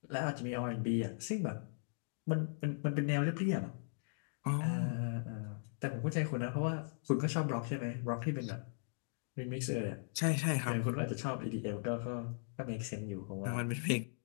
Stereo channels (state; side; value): silent; right; digital silence